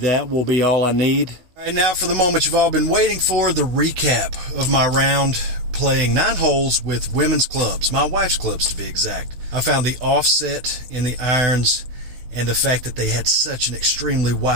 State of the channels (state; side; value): late; left; 16 ms